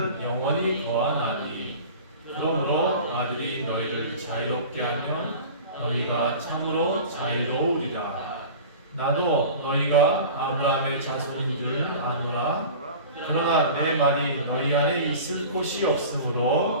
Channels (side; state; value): both; inverted; correlation -0.37